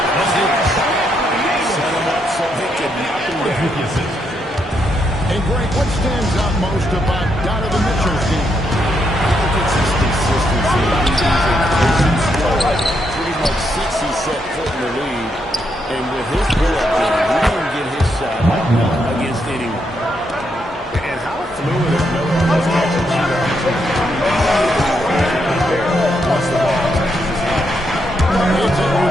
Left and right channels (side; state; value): both; normal; correlation 0.79